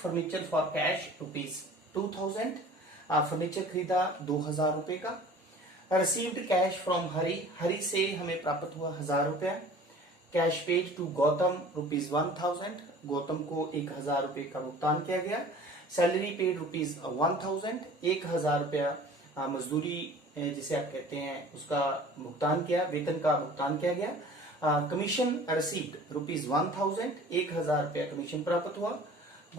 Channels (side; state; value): both; normal; correlation 0.45